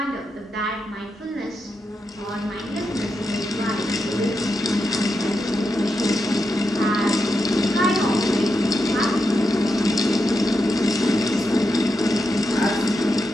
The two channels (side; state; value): both; normal; correlation 0.86